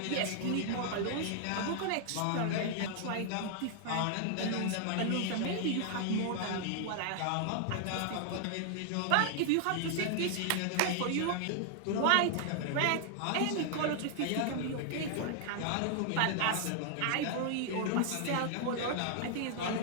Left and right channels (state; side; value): different; both; correlation 0.00